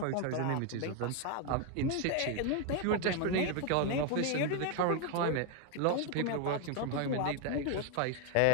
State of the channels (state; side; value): different; both; correlation 0.01